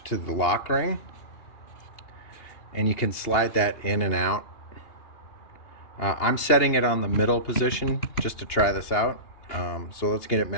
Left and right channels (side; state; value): right; late; 2.8 ms